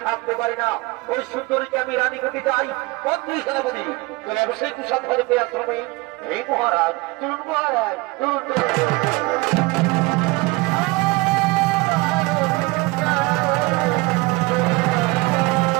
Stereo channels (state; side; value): quieter; left; 24.3 dB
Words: থাকতে পারি না। ওই সুন্দরীকে আমি রানী করতে চাই। মন্ত্রী সেনাপতি, চলে অবশ্যই কুশল ঘরে পেয়ে আশ্রমে। এই মহারাজ, চলুন মহারাজ, চলুন